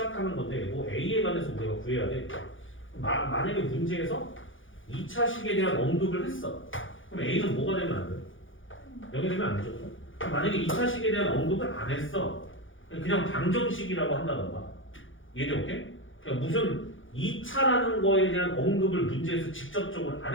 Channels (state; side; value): late; right; 0.57 ms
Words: 건데 뭐 A에 관해서 우리가 구해야 돼. 만약에 문제에서 2차식에 대한 언급을 했어. 그럼 A는 뭐가 되면 안 돼? 0이 되면 안 되죠. 만약에 2차식에 대한 언급을 안 했어. 그냥 방정식이라고 한다던가. 이해돼? 오케이? 그러니까 무슨 2차라는 거에 대한 언급을 문제에서 직접적으로 안